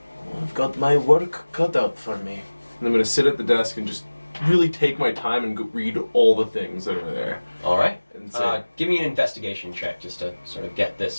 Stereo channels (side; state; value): both; inverted; correlation -1.00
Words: "Oh, I've got my work cut out for me." And I'm going to sit at the desk and just really take my time and read all the things that are there. All right. And say, Give me an investigation check just to sort of get this